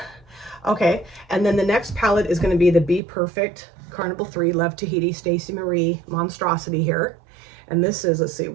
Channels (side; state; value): left; drops out; at 3.0 s